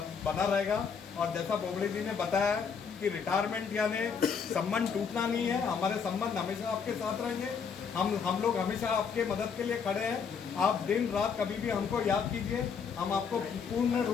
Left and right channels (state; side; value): quieter; right; 6.2 dB